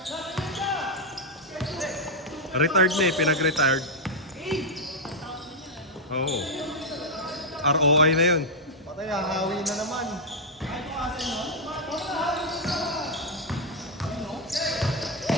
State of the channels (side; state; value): both; normal; correlation -0.01